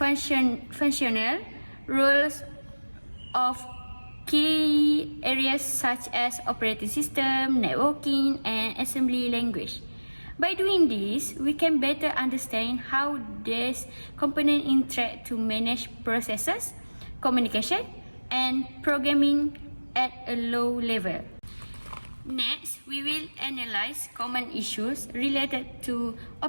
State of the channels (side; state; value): both; inverted; correlation -1.00